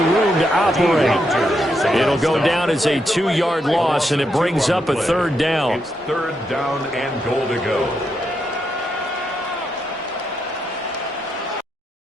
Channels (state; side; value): normal; both; correlation 0.81